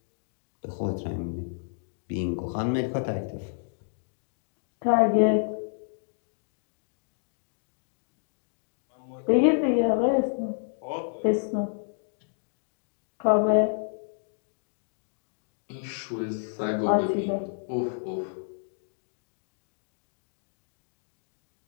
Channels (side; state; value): right; silent; digital silence